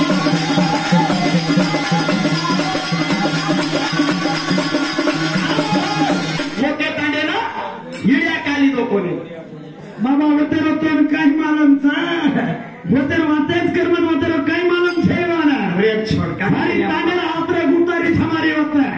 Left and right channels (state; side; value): identical; both; correlation 1.00